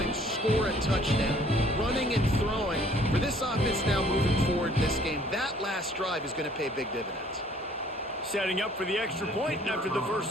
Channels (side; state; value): both; normal; correlation 0.58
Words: and score a touchdown. Running and throwing. For this offense now moving forward in this game, that last drive is going to pay big dividends. Setting up for the extra point after the first